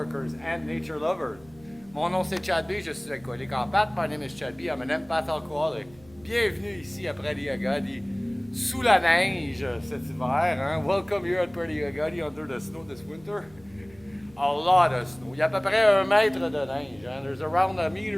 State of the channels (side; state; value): right; noise; hum, 25 dB below the sound